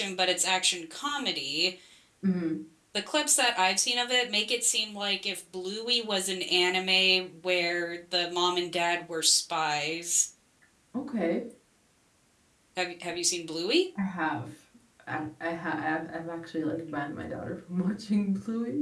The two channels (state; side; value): identical; both; correlation 1.00